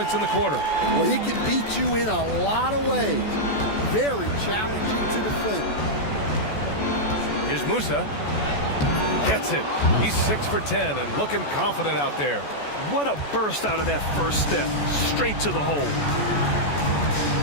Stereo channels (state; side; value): late; right; 14 ms